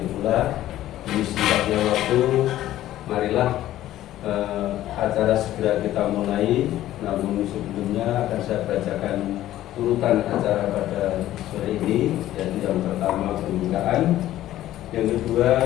pula. Di singkatnya waktu, marilah acara segera kita mulai. Namun sebelumnya akan saya bacakan urutan acara pada sore ini, yaitu yang pertama pembukaan, yang kedua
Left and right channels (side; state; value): right; quieter; 13.8 dB